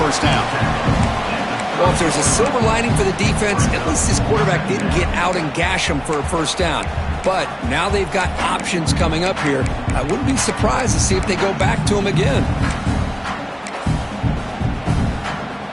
down. Well, if there's a silver lining for the defense, at least this quarterback didn't get out and gash him for a first down. But now they've got options coming up here. I wouldn't be surprised to see if they go back to him again.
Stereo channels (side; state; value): both; identical; correlation 1.00